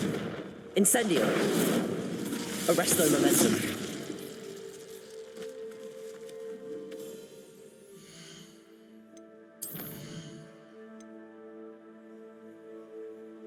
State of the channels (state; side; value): identical; both; correlation 1.00